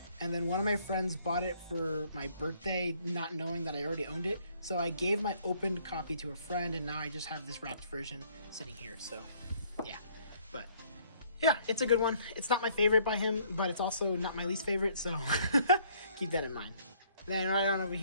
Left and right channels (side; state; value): both; inverted; correlation -0.62